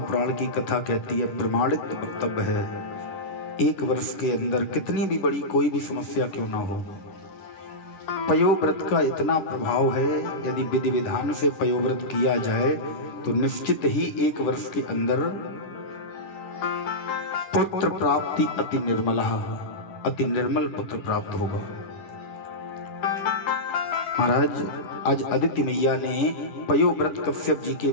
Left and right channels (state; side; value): late; right; 10 ms